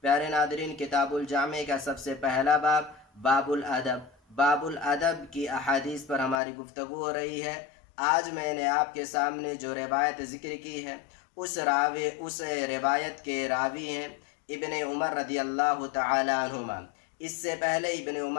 پیارے ناظرین، کتاب الجامع کا سب سے پہلا باب الادب، باب الادب کی احادیث پر ہماری گفتگو ہو رہی ہے۔ آج میں نے آپ کے سامنے جو روایت ذکر کی ہے اس روایت کے راوی ہیں ابن عمر رضی اللہ تعالی عنہما۔ اس سے پہلے ابن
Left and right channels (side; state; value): right; drops out; at 6.4 s